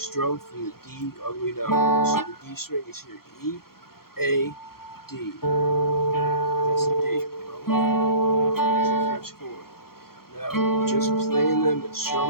from the D all the way down. So the D string is here, E, A, D. That's the D. That's the first chord. Now, just playing them and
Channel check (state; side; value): late; right; 0.94 ms